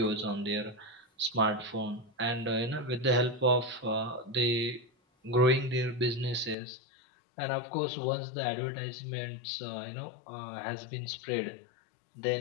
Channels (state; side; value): drops out; right; at 6.6 s